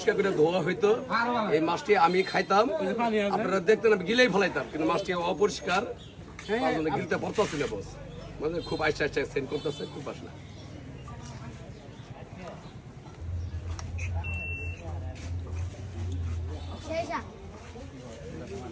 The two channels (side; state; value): both; identical; correlation 1.00